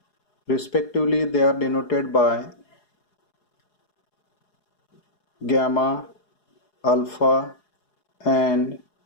Respectively, they are denoted by gamma, alpha and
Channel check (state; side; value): late; right; 4.8 ms